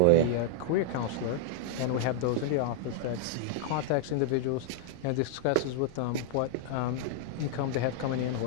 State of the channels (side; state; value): both; different; correlation -0.01